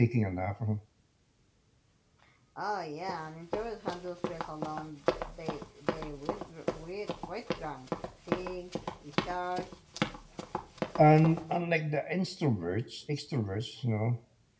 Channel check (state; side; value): identical; both; correlation 1.00